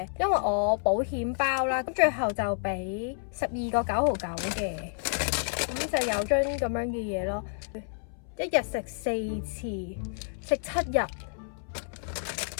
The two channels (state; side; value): silent; right; 58 dB below the other